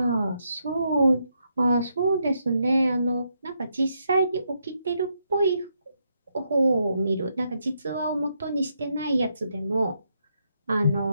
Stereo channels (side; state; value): both; inverted; correlation -0.79